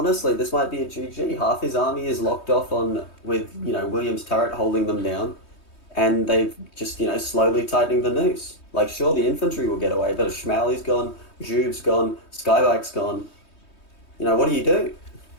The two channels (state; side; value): late; right; 3.2 ms